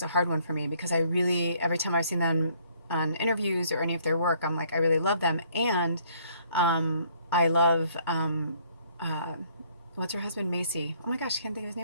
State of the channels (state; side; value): inverted; both; correlation -0.63